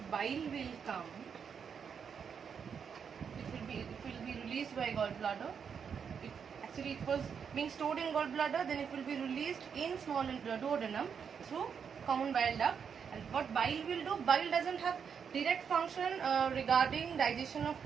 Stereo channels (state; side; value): quieter; left; 6.9 dB